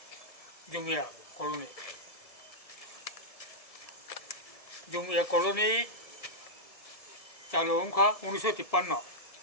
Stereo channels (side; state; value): right; late; 1.6 ms